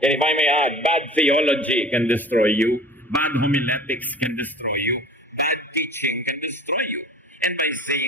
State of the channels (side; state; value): both; normal; correlation 0.42